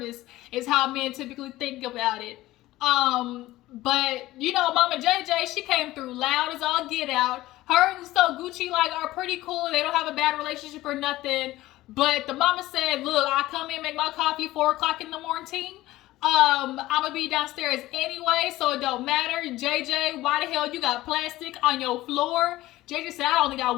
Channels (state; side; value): quieter; right; 16.8 dB